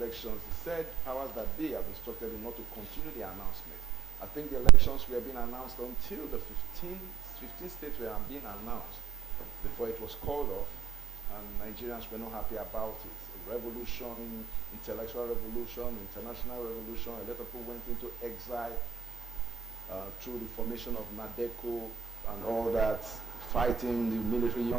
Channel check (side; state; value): left; quieter; 8.7 dB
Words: He said powers that be have instructed him not to continue the announcement. I think the elections were being announced until the 15 states were being announced before it was called off, and Nigerians were not happy about it. Revolution, intellectual revolution, international revolution, a lot of people went into exile through the formation of NADECO and all that, fighting the military